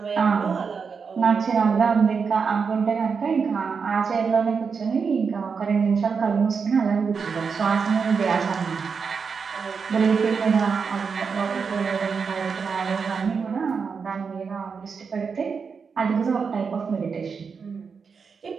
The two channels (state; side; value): quieter; left; 5.6 dB